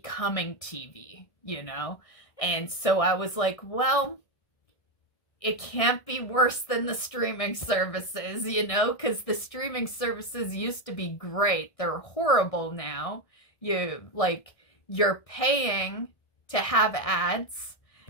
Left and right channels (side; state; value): right; late; 1.6 ms